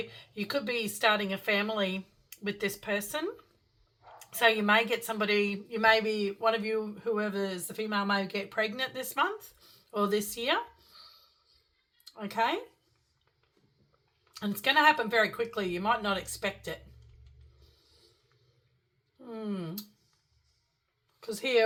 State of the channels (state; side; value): identical; both; correlation 1.00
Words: you could be starting a family with this person. So you may get somebody, you may be, one of you, whoever is the female, may get pregnant this month or this year. Okay. And it's going to happen very quickly. You might not expect it. Because